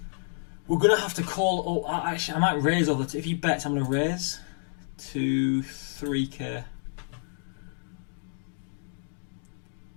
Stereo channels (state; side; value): silent; right; digital silence